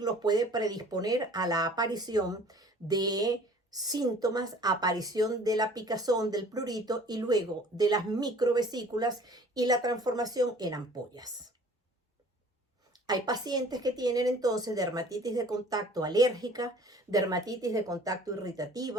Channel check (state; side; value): normal; both; correlation 0.50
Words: puede predisponer a la aparición de síntomas, aparición de la picazón, del prurito y luego de las microvesículas y la transformación en ampollas. Hay pacientes que tienen entonces dermatitis de contacto alérgica, dermatitis de contacto